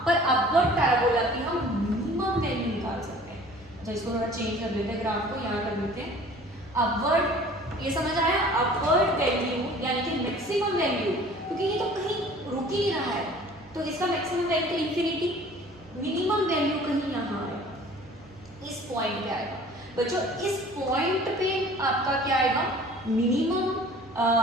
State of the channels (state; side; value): normal; both; correlation 0.48